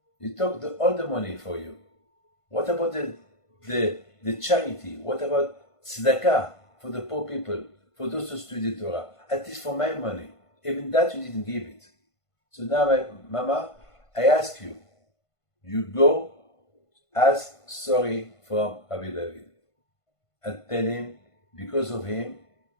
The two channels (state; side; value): late; right; 1.5 ms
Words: You took all the money for you. What about the charity? What about tzedakah for the poor people, for those who study Torah? At least for my money. Even that you didn't give it. So now, Mama, I ask you, you go ask sorry from Rabbi David and tell him, because of him,